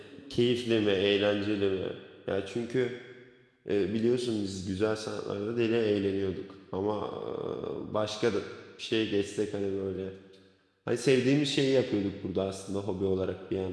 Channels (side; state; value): both; identical; correlation 1.00